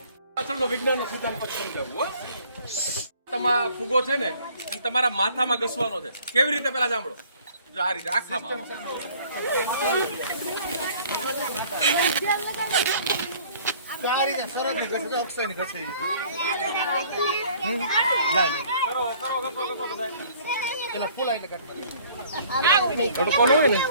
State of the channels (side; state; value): both; inverted; correlation -0.55